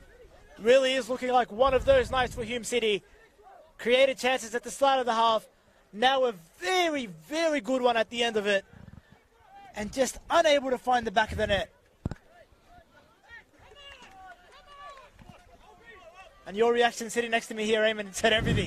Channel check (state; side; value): identical; both; correlation 1.00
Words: Really is looking like one of those nights for Hume City. Created chances at the start of the half. Now a very, very good one at the end of it. And just unable to find the back of the net. And your reaction sitting next to me here, Eamon, said